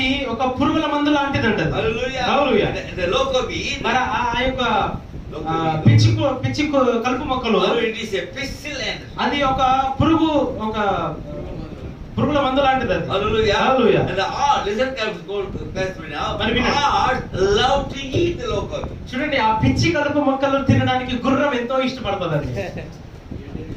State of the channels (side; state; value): both; identical; correlation 1.00